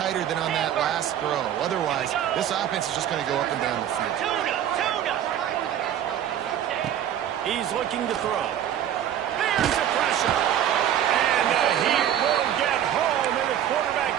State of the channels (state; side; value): quieter; left; 10.5 dB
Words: than on that last throw. Otherwise, this offense is just going to go up and down the field. He's looking to throw. There's the pressure. And he will get home, and the quarterback